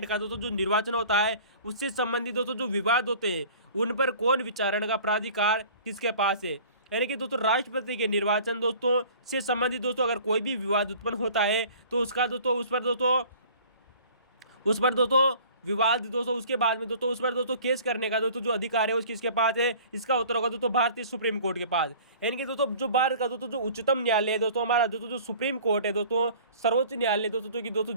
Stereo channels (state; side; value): inverted; both; correlation -0.47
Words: का दोस्तों जो निर्वाचन होता है, उससे संबंधित दोस्तों जो विवाद होते हैं उन पर कौन विचारण का प्राधिकार किसके पास है। यानी कि दोस्तों राष्ट्रपति के निर्वाचन दोस्तों से संबंधित दोस्तों अगर कोई भी विवाद उत्पन्न होता है तो उसका दोस्तों उस पर दोस्तों विवाद दोस्तों उसके बाद में दोस्तों उस पर दोस्तों केस करने का दोस्तों जो अधिकार है उसकी किसके पास है। इसका उत्तर होगा दोस्तों भारतीय सुप्रीम कोर्ट के पास। यानी कि दोस्तों जो भारत का दोस्तों जो उच्चतम न्यायालय है दोस्तों, हमारा दोस्तों जो सुप्रीम कोर्ट है दोस्तों, सर्वोच्च न्यायालय दोस्तों जो कि